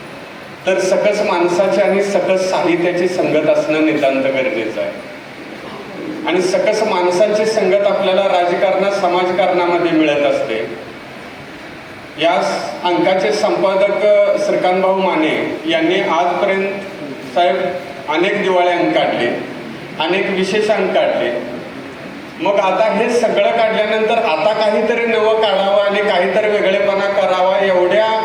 तर सकस माणसाची आणि सकस साहित्याची संगत असणं नितांत गरजेचं आहे. आणि सकस माणसांची संगत आपल्याला राजकारणात, समाजकारणामध्ये मिळत असते. या अंकाचे संपादक श्रीकांतभाऊ माने यांनी आजपर्यंत साहेब अनेक दिवाळे अंक काढले, अनेक विशेष अंक काढले. मग आता हे सगळं काढल्यानंतर आता काहीतरी नवं काढावं आणि काहीतरी वेगळेपणा करावा एवढ्या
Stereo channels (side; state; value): both; identical; correlation 1.00